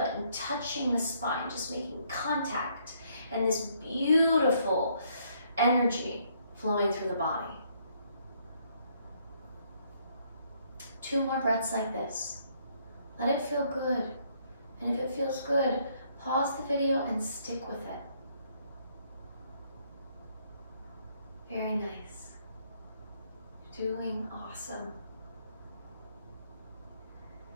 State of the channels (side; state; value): both; inverted; correlation -0.69